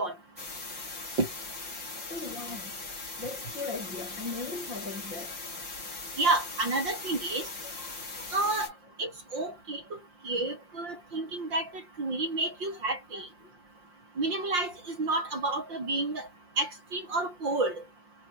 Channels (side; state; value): left; late; 5.7 ms